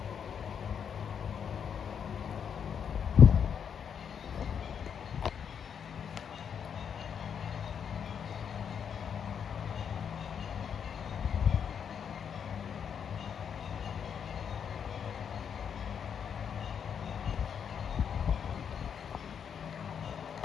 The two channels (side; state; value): right; quieter; 7.6 dB